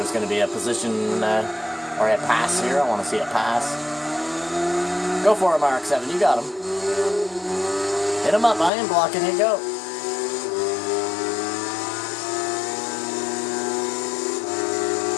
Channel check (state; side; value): drops out; right; at 8.7 s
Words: going to be a position or a pass here. I want to see a pass. Go for him, RX-7. You got him. Hit him up. I am blocking it. Go.